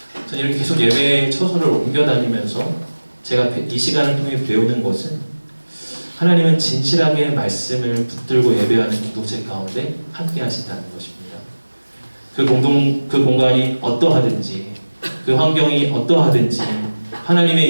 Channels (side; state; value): both; inverted; correlation -1.00